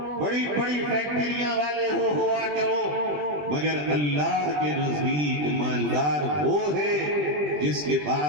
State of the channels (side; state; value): left; late; 20 ms